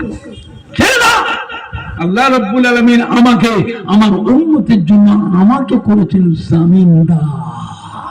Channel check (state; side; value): identical; both; correlation 1.00